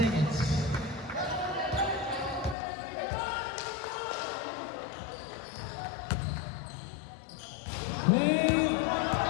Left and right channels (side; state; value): right; drops out; at 2.6 s